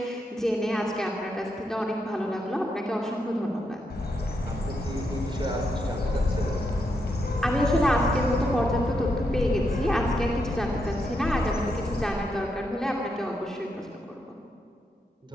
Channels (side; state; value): both; normal; correlation 0.81